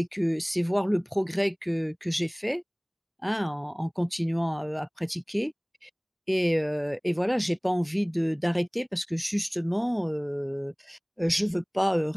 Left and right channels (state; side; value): identical; both; correlation 1.00